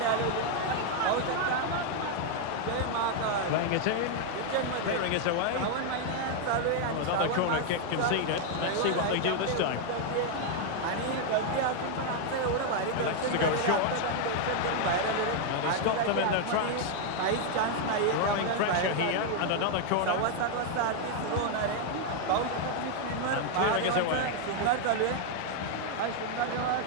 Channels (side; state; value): both; different; correlation 0.01